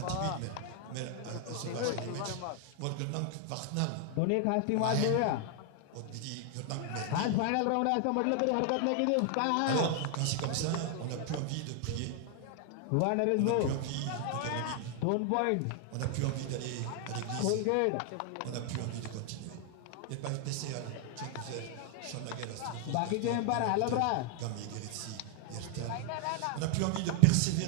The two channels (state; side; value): different; both; correlation 0.00